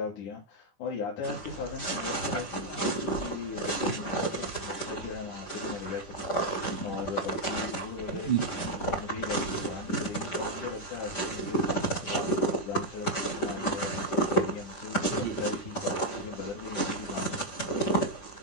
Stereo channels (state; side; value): late; right; 10 ms